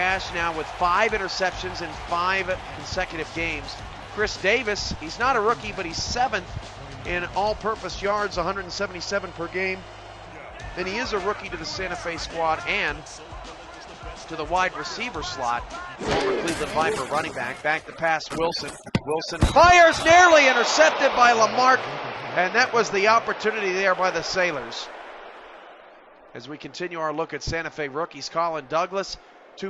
now with 5 interceptions in 5 consecutive games. Chris Davis, he's not a rookie, but he's 7th in all-purpose yards, 177 per game. And he is a rookie to the Santa Fe squad and to the wide receiver slot. Former Cleveland Viper running back to pass Wilson. Wilson fires, nearly intercepted by Lamarck, and that was the opportunity there by the Sailors. As we continue our look at Santa Fe rookies, Colin Douglas,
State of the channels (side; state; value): both; identical; correlation 1.00